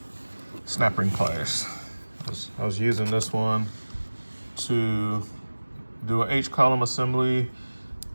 snap ring pliers. I was using this one to do an H-column assembly,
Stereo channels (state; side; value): inverted; both; correlation -1.00